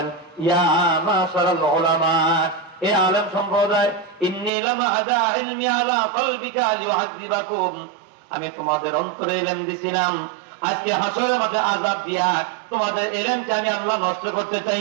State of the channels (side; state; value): left; drops out; at 4.5 s